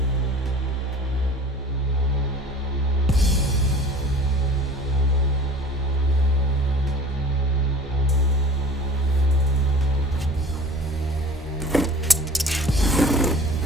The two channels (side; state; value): both; normal; correlation 0.44